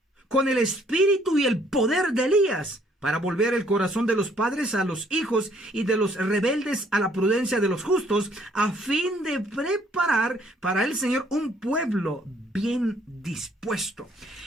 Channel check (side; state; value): both; normal; correlation 0.64